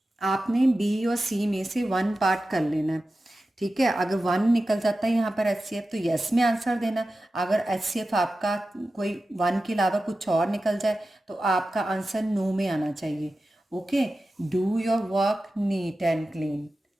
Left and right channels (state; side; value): normal; both; correlation 0.93